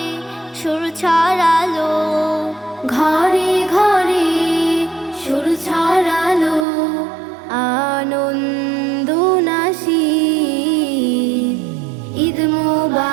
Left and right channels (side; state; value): left; drops out; at 6.7 s